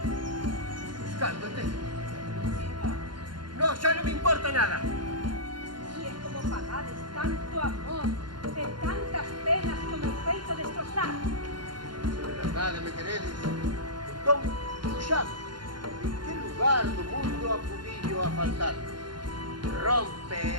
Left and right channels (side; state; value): left; late; 0.71 ms